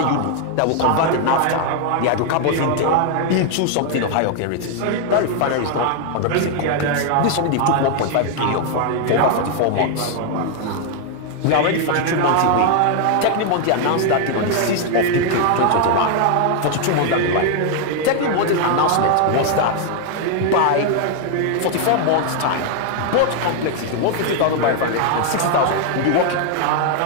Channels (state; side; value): different; both; correlation 0.00